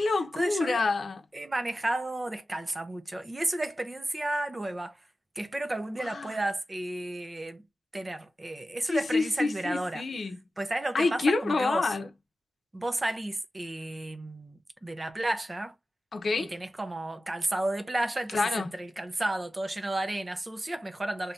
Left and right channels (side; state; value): both; normal; correlation 0.93